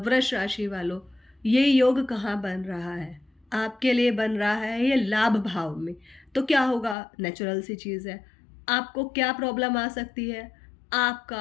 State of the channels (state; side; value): drops out; right; at 7.0 s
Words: राशि वालों, ये योग कहाँ बन रहा है? आपके लिए बन रहा है ये लाभ भाव में। तो क्या होगा, नेचुरल सी चीज़ है। आपको क्या प्रॉब्लम आ सकती है?